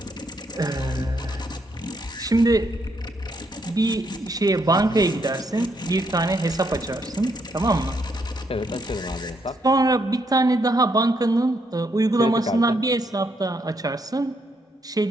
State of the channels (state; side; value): normal; both; correlation 0.75